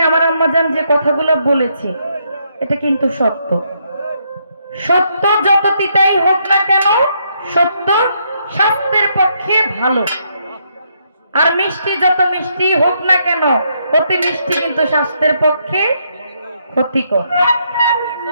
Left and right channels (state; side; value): inverted; both; correlation -0.75